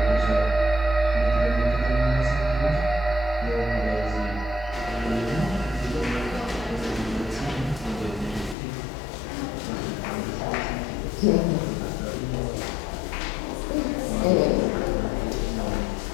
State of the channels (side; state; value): right; drops out; at 8.6 s